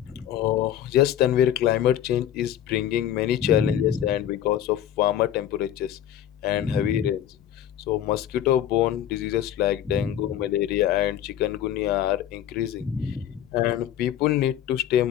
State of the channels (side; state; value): right; quieter; 10.8 dB